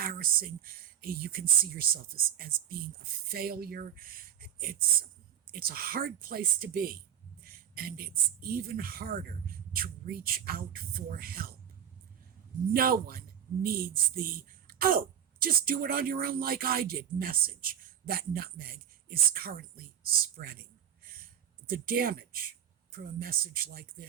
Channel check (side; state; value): left; quieter; 9.4 dB